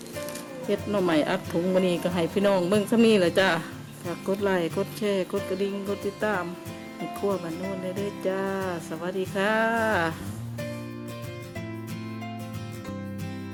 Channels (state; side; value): identical; both; correlation 1.00